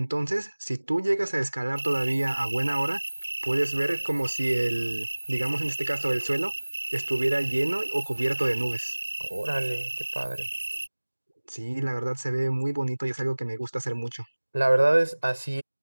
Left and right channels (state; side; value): inverted; both; correlation -1.00